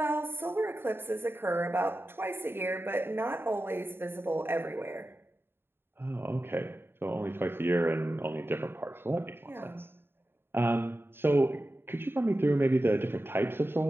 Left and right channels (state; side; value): late; left; 0.11 ms